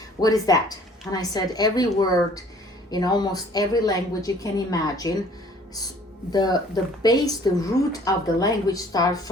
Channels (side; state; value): both; normal; correlation 0.54